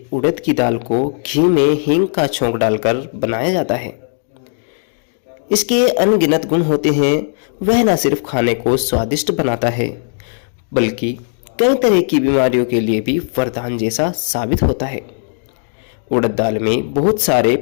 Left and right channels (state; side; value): silent; right; digital silence